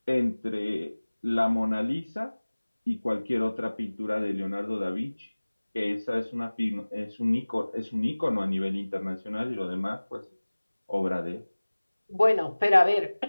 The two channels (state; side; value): inverted; both; correlation -1.00